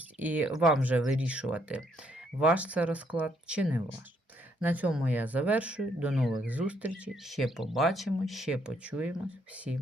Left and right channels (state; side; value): normal; both; correlation 0.71